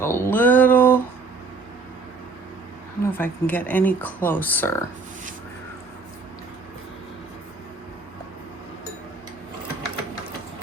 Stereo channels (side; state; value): left; quieter; 4.1 dB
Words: a little, I don't know if I can get any closer.